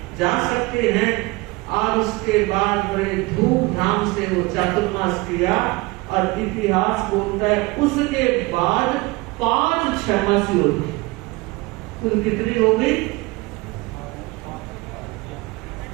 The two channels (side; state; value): left; quieter; 23.3 dB